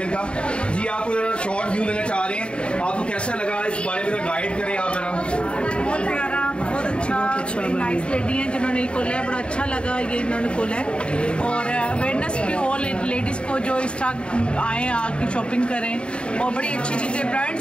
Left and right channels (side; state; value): right; late; 0.055 ms